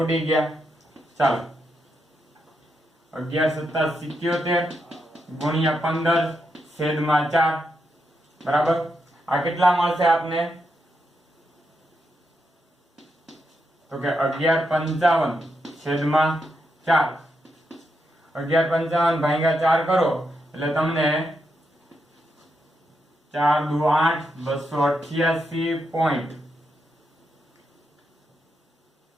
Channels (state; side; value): normal; both; correlation 0.83